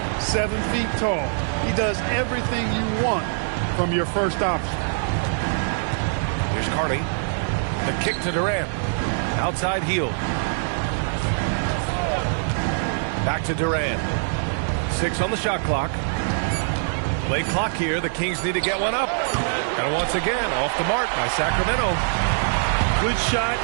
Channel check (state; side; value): silent; left; 63 dB below the other